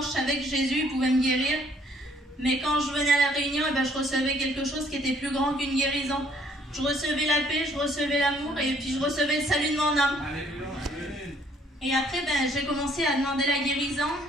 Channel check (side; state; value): both; normal; correlation 0.63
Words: je savais que Jésus pouvait me guérir. Mais quand je venais à la réunion, je recevais quelque chose qui était plus grand qu'une guérison. Je recevais la paix, je recevais l'amour et puis je recevais le salut de mon âme. Et après, j'ai commencé à demander la guérison.